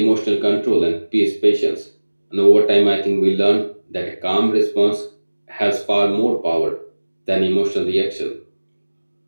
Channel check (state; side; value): inverted; both; correlation -1.00